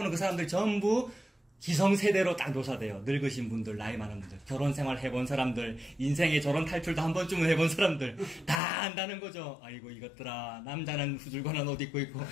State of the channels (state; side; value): drops out; right; at 8.6 s